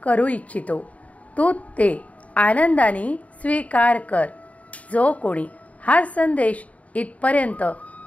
करू इच्छितो. तू ते आनंदाने स्वीकार कर. जो कोणी हा संदेश इथपर्यंत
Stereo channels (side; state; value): right; late; 0.068 ms